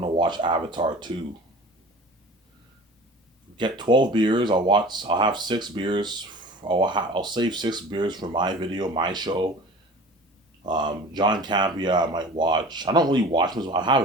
watch Avatar 2. Get 12 beers. I'll have 6 beers. I'll save 6 beers for my video, my show. John Campea I might watch. I don't really watch him. I have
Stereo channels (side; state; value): both; normal; correlation 0.40